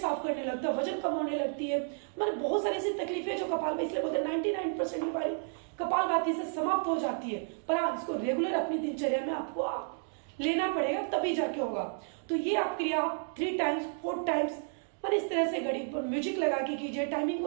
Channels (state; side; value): silent; left; 57 dB below the other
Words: करने लगता है, वजन कम होने लगती है, मतलब बहुत सारी ऐसी तकलीफें जो कपालभाति, इसलिए बोलते हैं 99% बीमारी कपालभाति से समाप्त हो जाती है। पर हाँ, इसको रेगुलर अपनी दिनचर्या में आपको लेना पड़ेगा, तभी जाके होगा। तो ये आप क्रिया 3 टाइम्स 4 टाइम्स और इस तरह से घड़ी पर म्यूजिक लगा के कीजिए, टाइमिंग